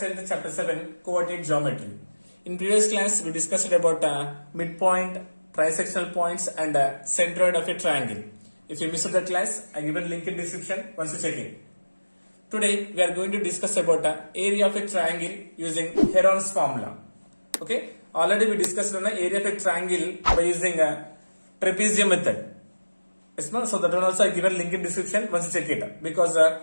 10th chapter 7 coordinate geometry. In previous class we discussed about midpoint, trisectional points and centroid of a triangle. If you missed the class, I given link in description once you check it. Today we are going to discuss about area of a triangle using Heron's formula. Okay, already we discussed on the area of a triangle by using trapezium method. Yes, no? So that one also I given link in description once you check it because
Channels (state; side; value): inverted; both; correlation -1.00